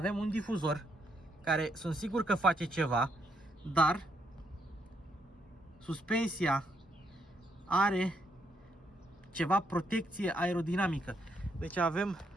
un difuzor care sunt sigur că face ceva, dar suspensia are ceva protecție aerodinamică. Deci avem,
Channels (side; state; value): both; normal; correlation 0.76